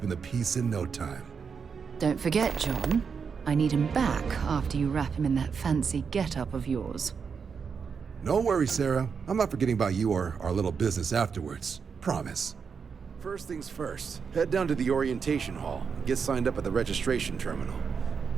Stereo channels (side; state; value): left; quieter; 6.0 dB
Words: the peace in no time. Don't forget, John. I need him back after you wrap him in that fancy get-up of yours. No worries, Sarah. I'm not forgetting about you or our little business afterwards. Promise. First things first, head down to the orientation hall and get signed up at the registration terminal.